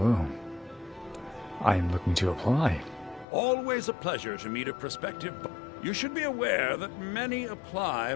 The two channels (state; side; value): drops out; right; at 3.2 s